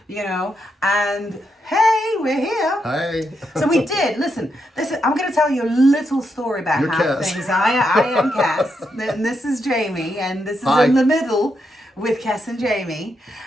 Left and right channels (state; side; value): normal; both; correlation 0.82